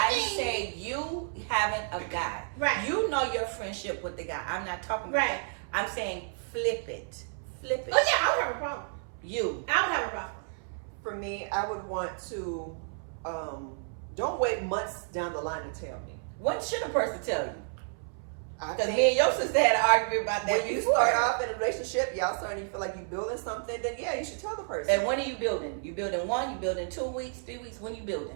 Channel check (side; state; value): left; silent; 57 dB below the other